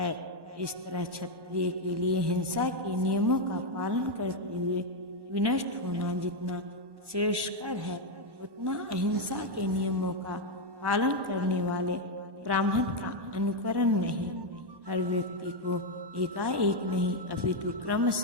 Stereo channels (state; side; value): late; left; 1.1 ms